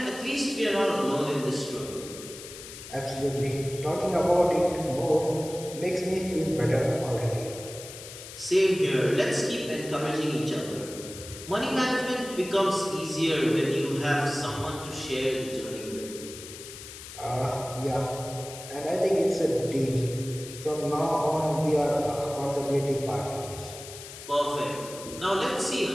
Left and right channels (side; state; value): left; noise; hiss, 13 dB below the sound